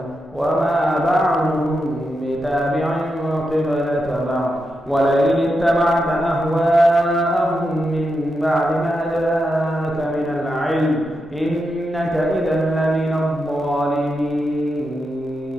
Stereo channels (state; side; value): normal; both; correlation 0.86